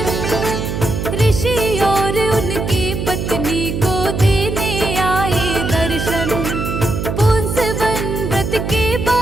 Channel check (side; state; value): right; noise; hum, 3 dB below the sound